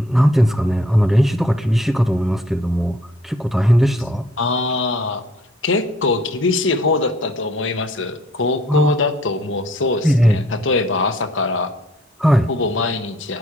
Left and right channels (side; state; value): both; normal; correlation 0.61